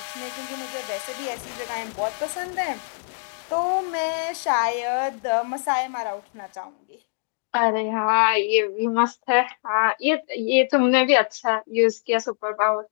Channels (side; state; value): right; silent; digital silence